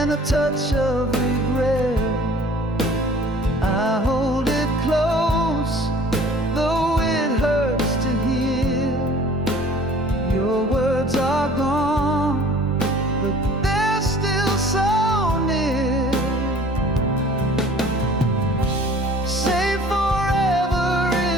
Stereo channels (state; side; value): normal; both; correlation 0.49